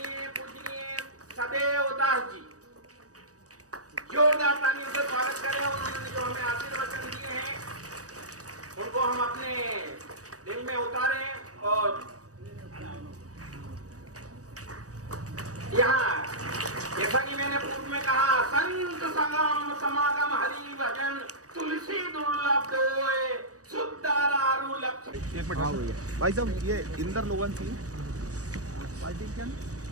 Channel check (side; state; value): left; late; 0.66 ms